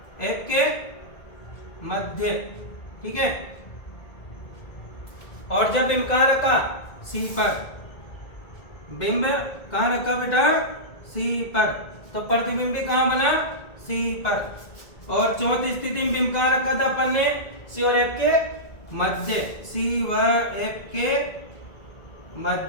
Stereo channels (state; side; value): late; right; 1.9 ms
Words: एफ के मध्य। ठीक है। और जब बिंब कहां रखा, सी पर, बिंब कहां रखा बेटा, सी पर, तो प्रतिबिंब भी कहां बना, सी पर। और चौथी स्थिति में बिंब कहां रखा था अपन ने, सी और एफ के मध्य, सी व एफ के